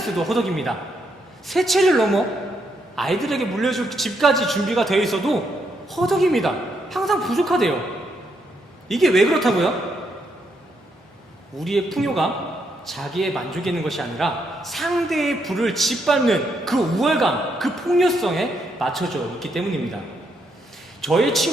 허덕입니다. 세 채를 넘어 아이들에게 물려줄 집까지 준비가 되어 있어도 허덕입니다. 항상 부족하대요. 이게 왜 그렇다고요? 우리의 풍요가 자기의 만족이 있는 것이 아니라 상대의 부를 짓밟는 그 우월감, 그 폭력성에 맞춰져 있기 때문입니다. 저의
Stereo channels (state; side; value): normal; both; correlation 0.77